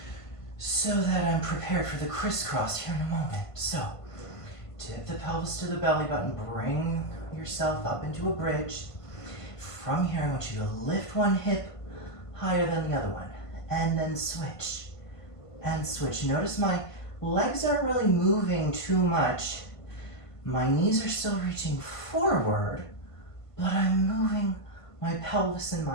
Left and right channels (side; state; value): right; late; 1.5 ms